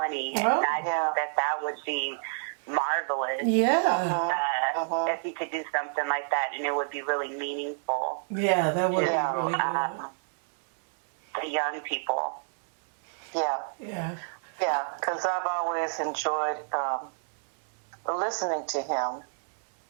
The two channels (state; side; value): silent; left; digital silence